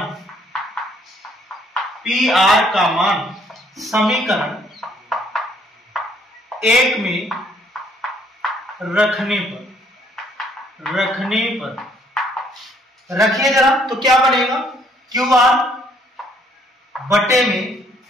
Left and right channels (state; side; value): normal; both; correlation 0.65